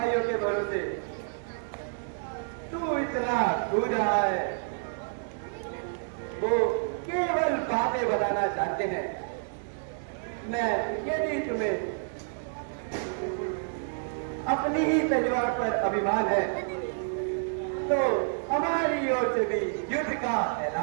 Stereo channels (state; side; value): silent; left; digital silence